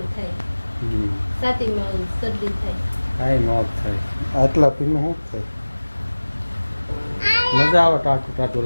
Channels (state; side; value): inverted; both; correlation -1.00